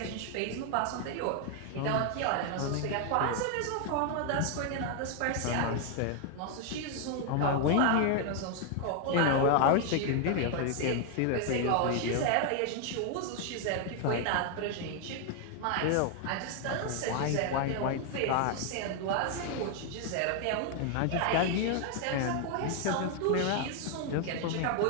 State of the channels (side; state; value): both; different; correlation 0.00